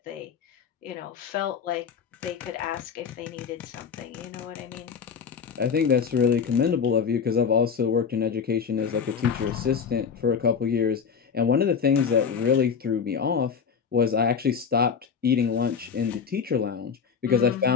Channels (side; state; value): right; quieter; 6.5 dB